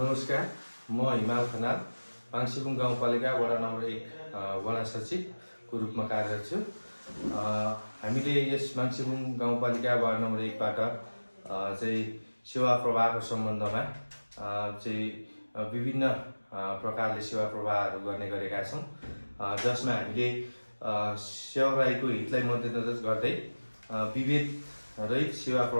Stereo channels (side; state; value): both; inverted; correlation -1.00